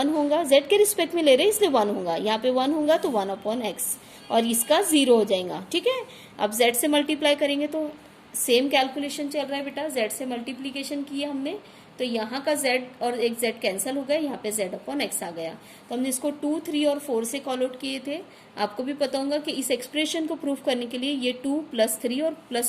होगा, z के रिस्पेक्ट में ले रहे हैं इसलिए 1 होगा, यहाँ पे 1 होगा तो 1/x और इसका 0 हो जाएगा, ठीक है। अब z से मल्टीप्लाई करेंगे तो सेम कैलकुलेशन चल रहा है बेटा, z से मल्टीप्लीकेशन किए हमने तो यहाँ का z और एक z कैंसिल हो गया, यहाँ पे z अपॉन x आ गया। तो हमने इसको 2, 3 और 4 से कॉल आउट किए थे। आपको भी पता होगा कि इस एक्सप्रेशन को प्रूफ करने के लिए ये 2 + 3 और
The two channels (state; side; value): identical; both; correlation 1.00